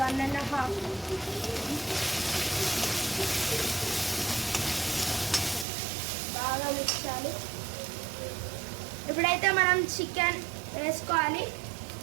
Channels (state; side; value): drops out; left; at 5.7 s